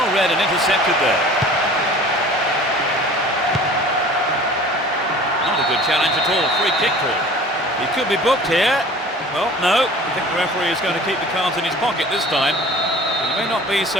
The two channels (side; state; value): both; normal; correlation 0.45